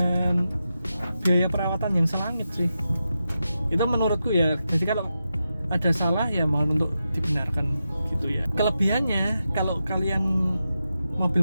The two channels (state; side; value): inverted; both; correlation -0.89